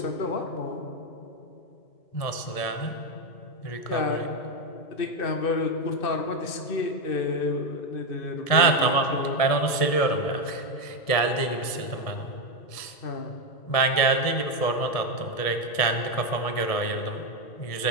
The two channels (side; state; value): right; late; 1.7 ms